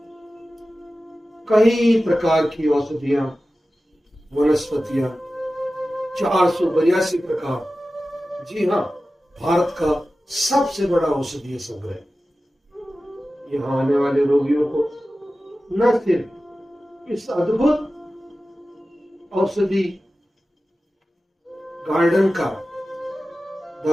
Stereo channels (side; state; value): both; normal; correlation 0.95